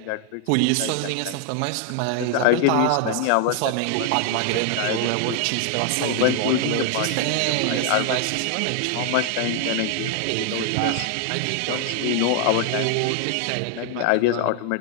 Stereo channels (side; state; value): both; different; correlation 0.00